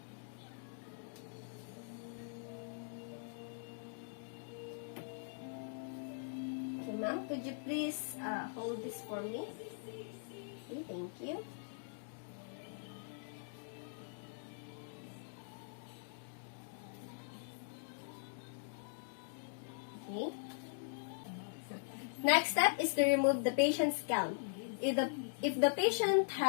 Okay, ma'am, could you please hold this for me? Okay, thank you. Okay. Next step is to remove the patient's gown. If the patient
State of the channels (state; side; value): silent; right; digital silence